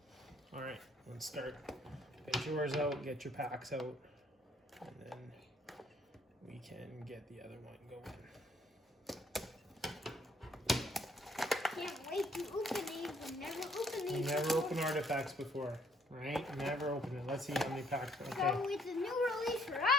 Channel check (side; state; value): both; normal; correlation 0.65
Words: All right, let's start. Get yours out, get your packs out, and then we can get the other one going. Can't wait to open these. I've never opened these. Never opened artifacts before, right? Never opened it. Let's see how many packs. Okay. So it's a new release for